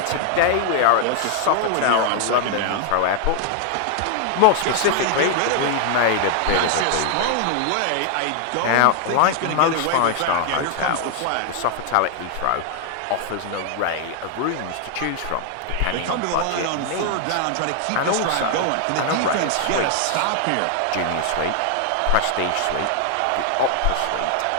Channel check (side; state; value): both; different; correlation 0.00